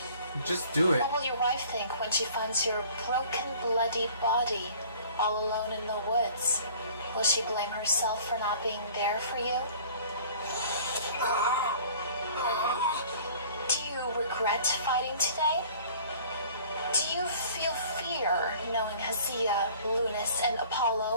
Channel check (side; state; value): both; inverted; correlation -0.49